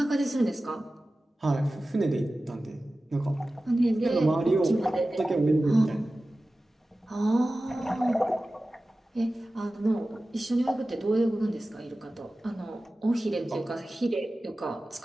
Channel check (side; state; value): both; normal; correlation 0.96